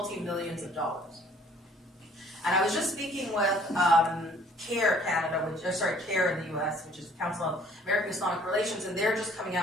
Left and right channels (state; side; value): normal; both; correlation 0.57